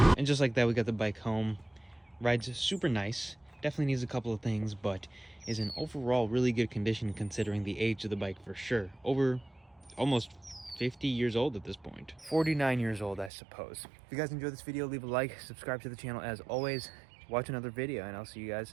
Just like that, we got the bike home. Rides super nice. Definitely needs a couple of things, but is in overall really good condition considering the age of the bike for sure. Over almost 50 years old at this point. 49 years old, I suppose. If you guys enjoyed this video, leave a like, subscribe to the channel as always, watch another video, and I'll see you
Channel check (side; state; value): left; drops out; at 13.3 s